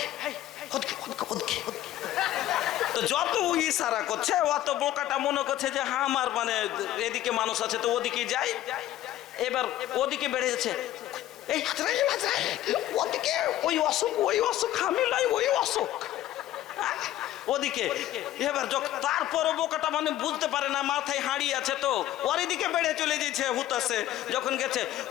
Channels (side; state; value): right; quieter; 13.7 dB